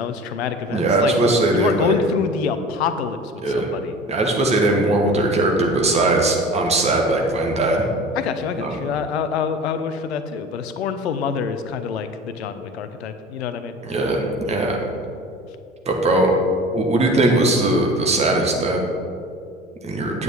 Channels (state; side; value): normal; both; correlation 0.39